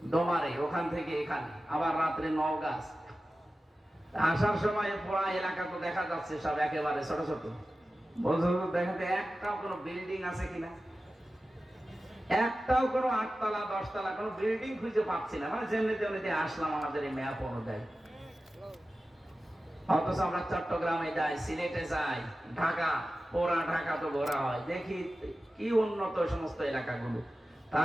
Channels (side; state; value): both; normal; correlation 0.94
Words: ডোমারে, ওখান থেকে এখানে, আবার রাত্রে নওগাঁ। আসার সময় পুরা এলাকা তো দেখা যাচ্ছে সব একেবারে ছোট ছোট। বলছো দেখাতে একটাও কোনো বিল্ডিং আছে কিনা, একটাও কোনো 8 তলা 10 তলা কোনো বিল্ডিং খুঁজে পাচ্ছি না। মানে যেমনিতে আসলাম আমাদের এই ম্যাপ অনুযায়ী। অথচ আমরা চট্টগ্রামে যাই, সিলেটে যাই, ঢাকা, পুরা ঢাকা তো ঘোরা হয়, দেখি কি উন্নত সমস্ত এলাকাগুলো।